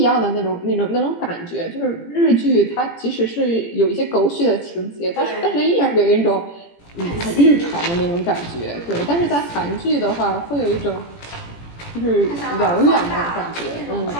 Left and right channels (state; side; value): late; right; 17 ms